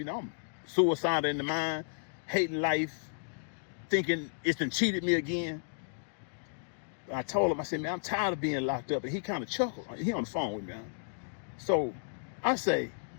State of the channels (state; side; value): silent; right; digital silence